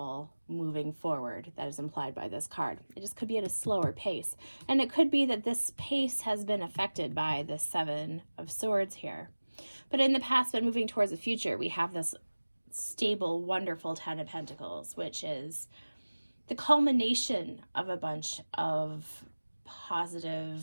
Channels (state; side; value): inverted; both; correlation -1.00